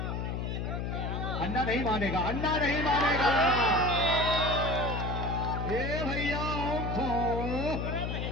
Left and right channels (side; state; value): left; noise; hum, 2 dB below the sound